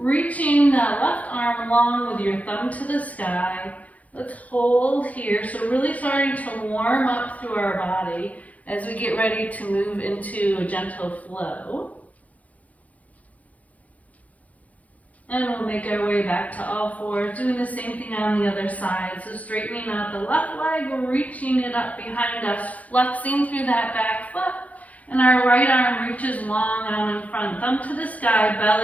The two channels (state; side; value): late; right; 0.071 ms